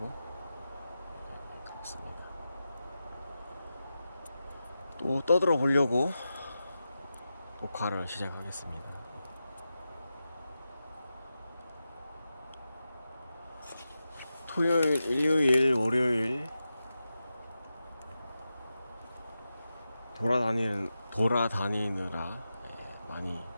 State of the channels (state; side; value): inverted; both; correlation -0.91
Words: 그렇습니다. 또 떠들어 보려고 녹화를 시작하겠습니다. 토요일, 일요일, 월요일 돌아다니느라 많이